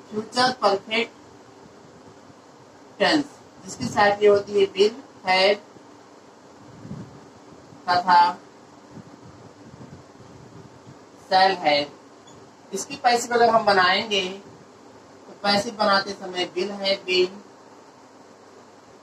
फ्यूचर परफेक्ट टेंस, जिसकी सहायक क्रिया होती है विल, हैड तथा शैल हैव। इसकी पैसिव अगर हम बनाएंगे तो पैसिव बनाते समय विल हैव बीन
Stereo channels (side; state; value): both; identical; correlation 1.00